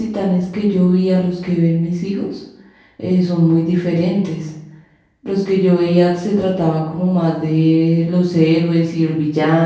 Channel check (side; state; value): both; identical; correlation 1.00